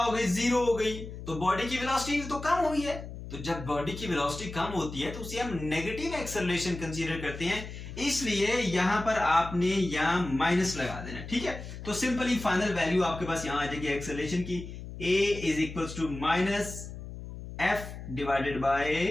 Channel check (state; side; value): noise; left; hum, 11 dB below the sound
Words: गई? 0 हो गई। तो बॉडी की वेलोसिटी तो कम हुई है, तो जब बॉडी की वेलोसिटी कम होती है तो उसे हम नेगेटिव एक्सेलरेशन कंसीडर करते हैं, इसलिए यहां पर आपने यहां माइनस लगा देना, ठीक है। तो सिंपली फाइनल वैल्यू आपके पास यहां आ जाएगी एक्सेलरेशन की, a is equal to minus f divided by